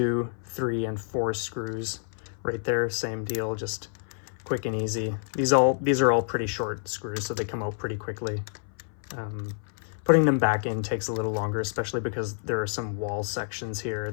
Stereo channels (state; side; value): silent; right; 57 dB below the other